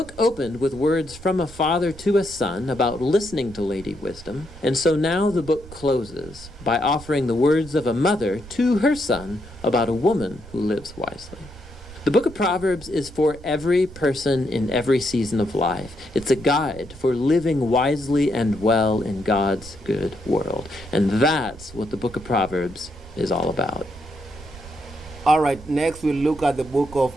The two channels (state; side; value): noise; right; rumble, 17 dB below the sound